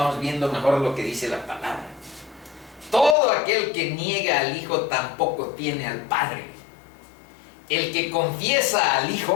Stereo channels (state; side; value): drops out; right; at 3.2 s